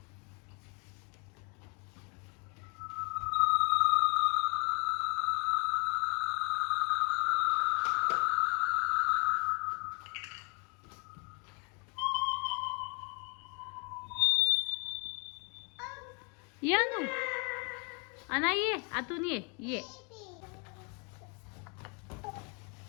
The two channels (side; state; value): right; quieter; 34.2 dB